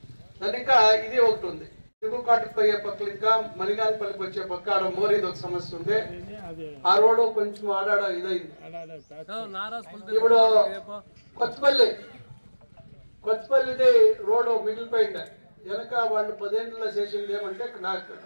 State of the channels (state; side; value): inverted; both; correlation -1.00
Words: దాని ఇంకా ఇది ఒకటి ఉంది. దిగుకాటుకు పోయే పక్కలు ఇంకా మలిగానపల్లికి వచ్చే పక్క ఆడ మోరీది ఒక సమస్య ఉంది. ఆ రోడ్డు కొంచెం ఆడాడ ఇదైంది. ఇప్పుడు కొత్తపల్లిది రోడ్డు మిగిలిపోయింది. వెనక వాళ్ళు 10 ఏళ్ళలో చేసింది ఏమంటే